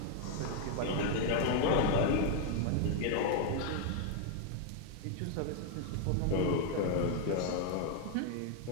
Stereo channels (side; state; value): both; different; correlation 0.00